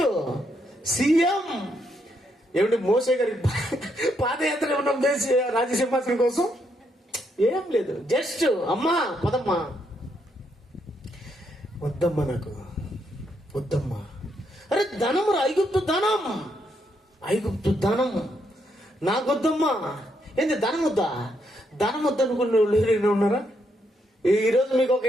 సీఎం. ఏమిటి మోసే గారి పాదయాత్ర ఏమన్నా దేశ రాజసింహాసనం కోసం? ఏం లేదు. జస్ట్ అమ్మా పదమ్మా, వద్దమ్మా, నాకు వద్దమ్మా. అరే ధనం రా, ఐగుప్తు ధనం, ఐగుప్తు ధనం నాకొద్దమ్మా. ఏంది ధనం వద్దా? ధనం వద్దనుకున్న వాళ్ళు ఎవరైనా ఉన్నారా? ఈరోజు మీకు ఒక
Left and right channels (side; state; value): both; normal; correlation 0.77